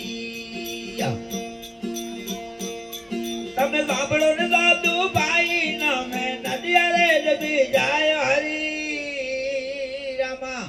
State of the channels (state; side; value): identical; both; correlation 1.00